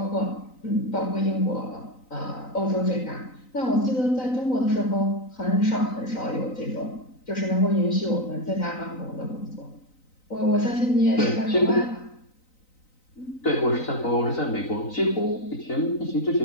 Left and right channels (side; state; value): right; late; 3.9 ms